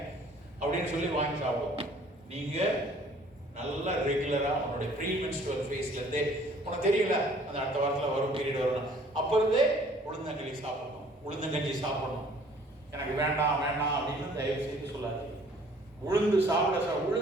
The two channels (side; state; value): both; normal; correlation 0.56